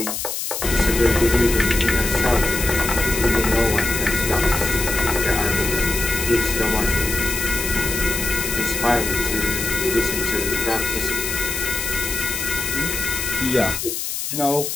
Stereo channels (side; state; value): left; noise; hiss, 4 dB below the sound